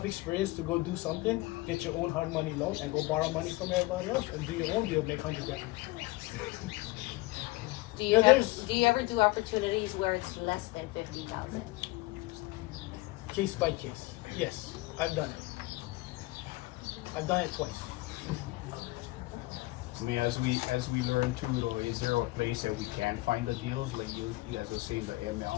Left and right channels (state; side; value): quieter; right; 21.0 dB